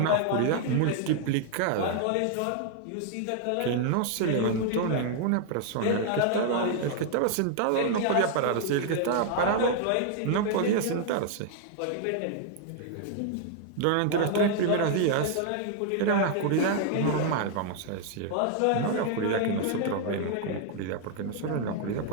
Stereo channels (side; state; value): both; different; correlation 0.00